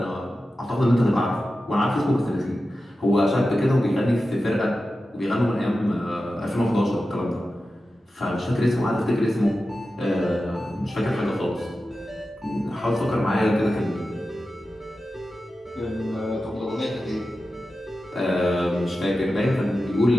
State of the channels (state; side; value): normal; both; correlation 0.93